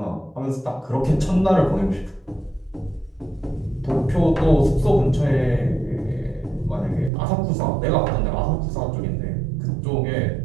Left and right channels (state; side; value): drops out; left; at 7.1 s